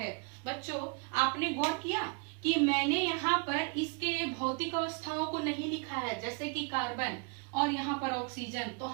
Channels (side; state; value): left; quieter; 34.2 dB